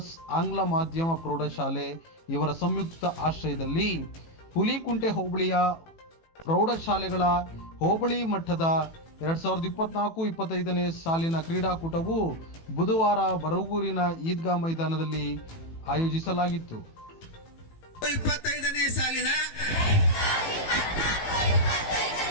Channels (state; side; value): late; right; 18 ms